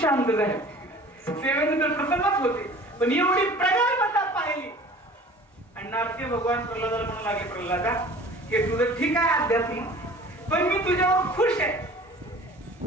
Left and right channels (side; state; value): both; normal; correlation 0.45